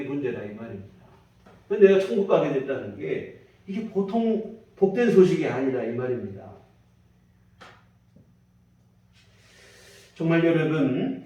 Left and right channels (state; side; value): identical; both; correlation 1.00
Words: 문제다 이 말입니다. 근데 내가 천국 가게 됐다는 게 이게 보통 복된 소식이 아니라 이 말입니다. 정말 여러분,